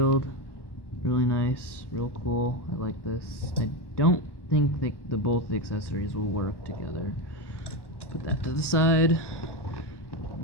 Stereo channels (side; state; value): right; late; 1.1 ms